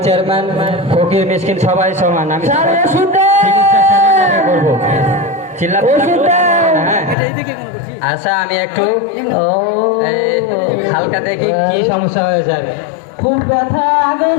চেয়ারম্যান ফকির মিসকিন সবাই সমান। আমি করবো আচ্ছা, আমি একটু হালকা দেখি কি সমস্যা হয়েছে। আর খুব ব্যথা, আগে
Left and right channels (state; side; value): drops out; right; at 7.2 s